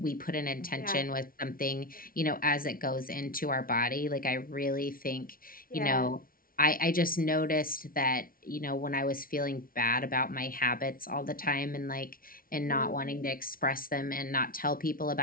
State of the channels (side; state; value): right; late; 0.42 ms